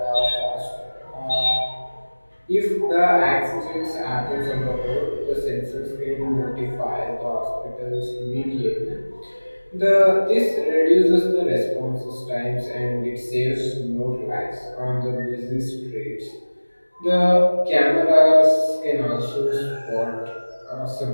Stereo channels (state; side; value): inverted; both; correlation -1.00